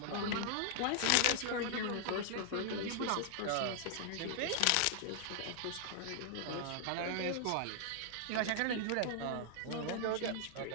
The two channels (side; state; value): both; different; correlation 0.00